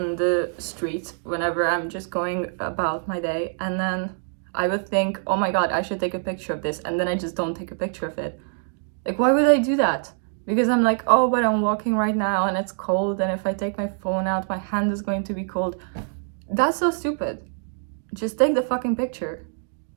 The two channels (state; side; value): silent; left; 62 dB below the other